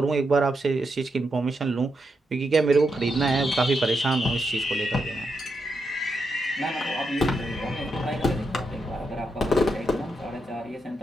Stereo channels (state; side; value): normal; both; correlation 0.83